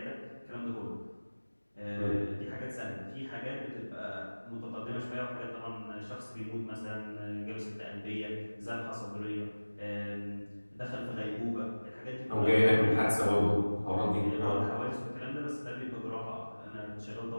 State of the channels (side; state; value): both; inverted; correlation -1.00